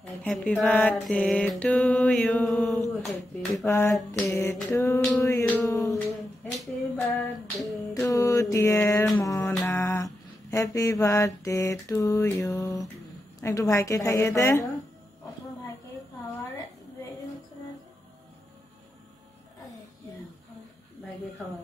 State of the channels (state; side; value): normal; both; correlation 0.88